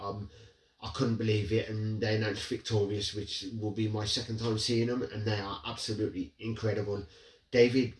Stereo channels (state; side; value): identical; both; correlation 1.00